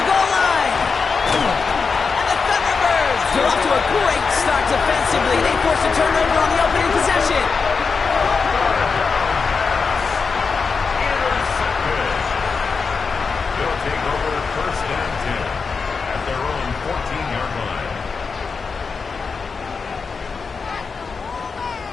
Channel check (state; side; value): quieter; right; 5.1 dB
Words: goal line! And the Thunderbirds are off to a great start defensively. They forced a turnover on the opening possession. They'll take over 1st and 10 at their own 14-yard line.